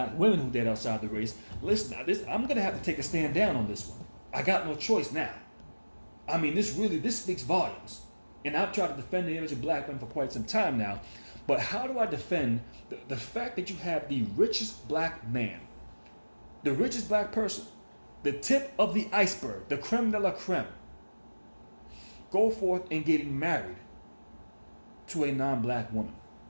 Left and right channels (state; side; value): inverted; both; correlation -1.00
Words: women who date outside the race, listen, I'm going to have to take a stand down on this one. I got no choice now. I mean, this speaks volumes. And I've tried to defend the image of black men for quite some time now. But how do I defend the fact that you have the richest black man, the richest black person, the tip of the iceberg, the creme de la creme, go forth and getting married to a non-black woman,